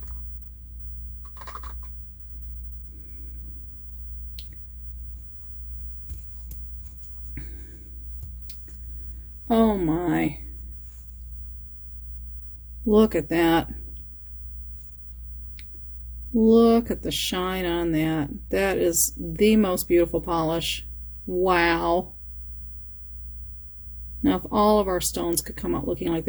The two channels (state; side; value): identical; both; correlation 1.00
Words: Oh my. Look at that. Look at the shine on that. That is the most beautiful polish. Wow. Now, if all of our stones could come out looking like